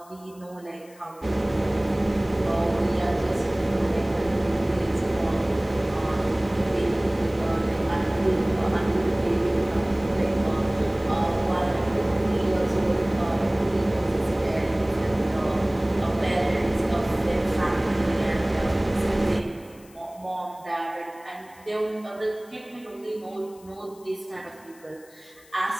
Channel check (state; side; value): noise; left; hiss, 26 dB below the sound